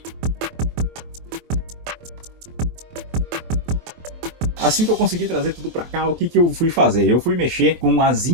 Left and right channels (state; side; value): late; left; 24 ms